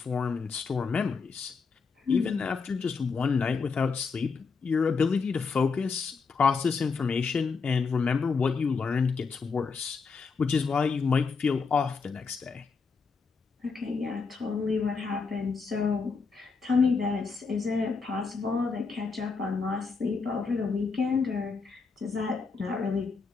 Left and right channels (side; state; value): right; quieter; 4.9 dB